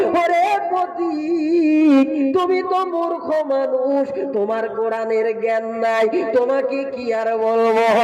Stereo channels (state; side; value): identical; both; correlation 1.00